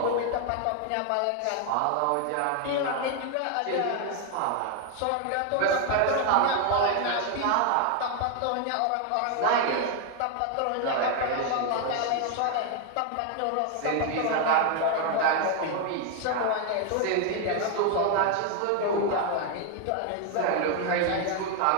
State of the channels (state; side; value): different; both; correlation 0.01